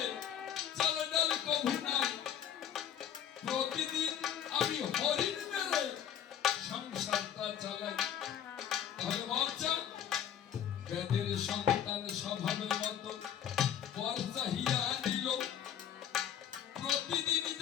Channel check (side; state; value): right; quieter; 9.6 dB